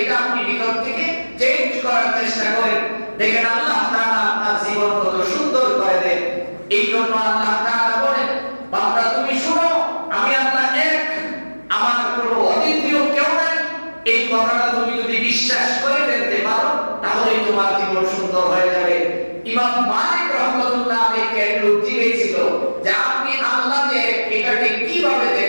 এটা আপনি ভিতর থেকে চেঞ্জ করার চেষ্টা করেন, দেখেন আল্লাহ তাআলা আপনার জীবন কত সুন্দর করে এই জন্য আল্লাহ তাআলা বলেন, বান্দা তুমি শুনো, আমি আল্লাহ এক, আমার কোনো অদ্বিতীয় কেউ নাই। এই কথাটা তুমি যদি বিশ্বাস করে ফেলতে পারো তাহলে তোমার জীবন সুন্দর হয়ে যাবে। ইমাম মালিক রাহমাতুল্লাহ আলাইহি একটু জিজ্ঞেস ছিল যে আপনি আল্লাহ যে এটাকে কিভাবে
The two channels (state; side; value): inverted; both; correlation -1.00